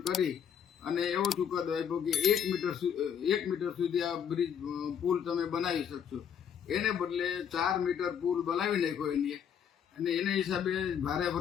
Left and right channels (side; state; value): right; quieter; 8.3 dB